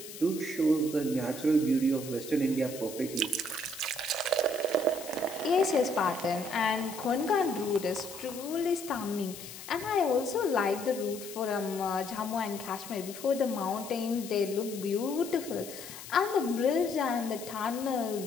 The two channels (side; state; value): left; noise; hiss, 13 dB below the sound